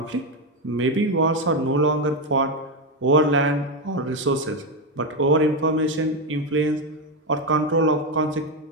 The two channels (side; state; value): both; normal; correlation 0.08